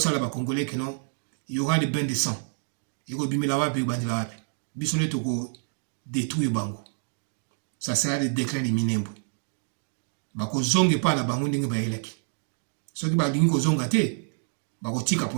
ba congolais que non, il y aura des bains de sang. Il go bimela wapi bandi la wapi. Bisone to ko détruire bango. Ça sera le déclin de Minembwe. Ba ko zonge pa na bango ndinga ba eleki. So ki ba dingi ko zonga te, ba ko tika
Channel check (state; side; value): silent; left; digital silence